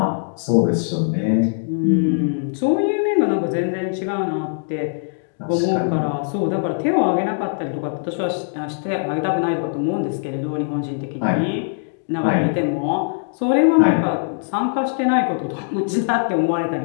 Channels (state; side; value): silent; right; digital silence